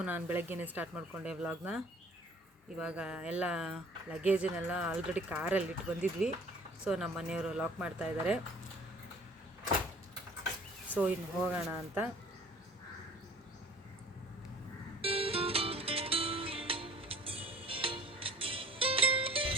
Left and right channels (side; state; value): both; normal; correlation 0.50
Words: ನಾನು ಬೆಳಗ್ಗೆನೇ ಸ್ಟಾರ್ಟ್ ಮಾಡಿಕೊಂಡೆ ವ್ಲಾಗ್ನ. ಇವಾಗ ಎಲ್ಲ ಲಗೇಜನ್ನೆಲ್ಲ ಆಲ್ರೆಡಿ ಕಾರಲ್ಲಿ ಇಟ್ಟು ಬಂದಿದ್ವಿ. ಸೊ ನಮ್ಮ ಮನೆಯವರು ಲಾಕ್ ಮಾಡ್ತಾ ಇದ್ದಾರೆ. ಸೊ ಇನ್ನು ಹೋಗೋಣ ಅಂತ.